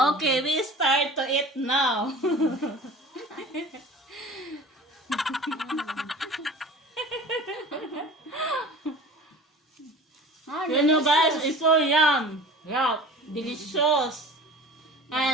Okay, we start to eat now. You know guys, it's so yum. Yeah, delicious.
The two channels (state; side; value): normal; both; correlation 0.40